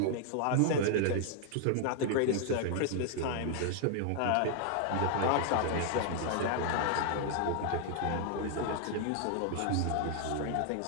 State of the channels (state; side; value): different; both; correlation 0.00